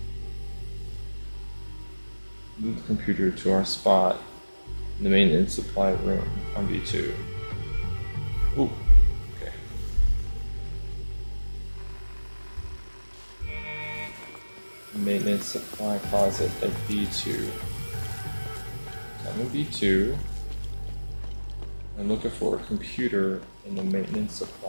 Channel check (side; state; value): both; inverted; correlation -1.00